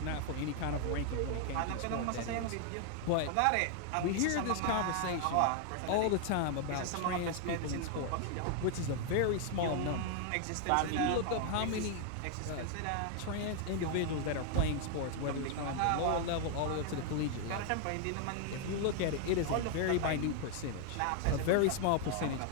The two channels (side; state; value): both; different; correlation 0.00